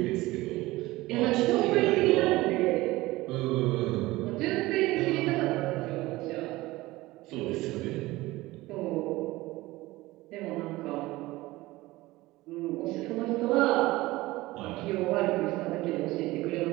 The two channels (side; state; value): left; quieter; 19.1 dB